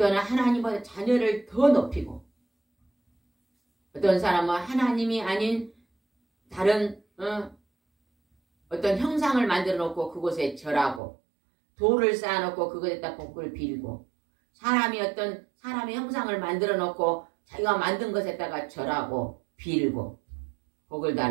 하나님보다 자녀를 더 높이고, 어떤 사람은 하나님이 아닌 다른 어떤 형상을 만들어 놓고 그곳에 절하고, 돌을 쌓아놓고 그것에다 복을 빌고, 사람이 어떤 사람의 형상을 만들어 놓고 자기가 만든 것에다가 절하고 빌고 복을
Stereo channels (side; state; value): left; drops out; at 11.0 s